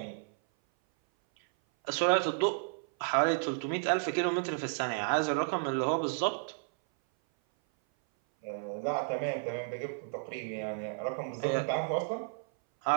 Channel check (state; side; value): silent; left; 56 dB below the other